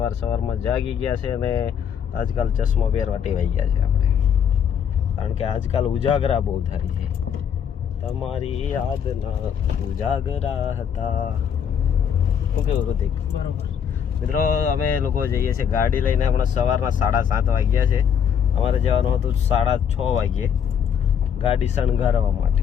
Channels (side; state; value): right; quieter; 8.0 dB